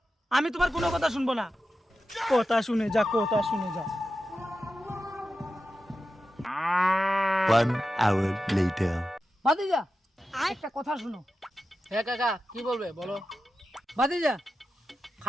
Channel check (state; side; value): normal; both; correlation 0.92